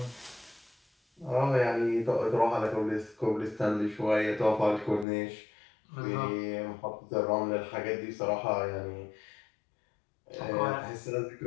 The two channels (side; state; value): right; drops out; at 5.1 s